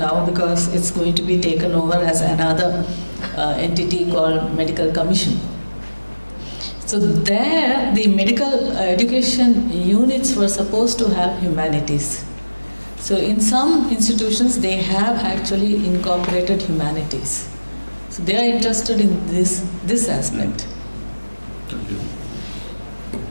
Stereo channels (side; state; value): both; inverted; correlation -1.00